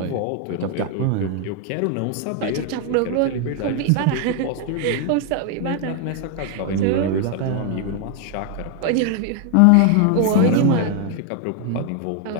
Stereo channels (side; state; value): both; different; correlation 0.00